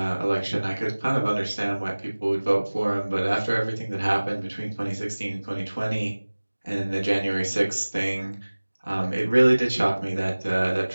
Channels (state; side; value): inverted; both; correlation -1.00